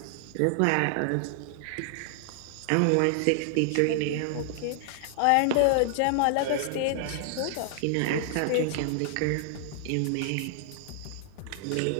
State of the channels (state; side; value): different; both; correlation 0.00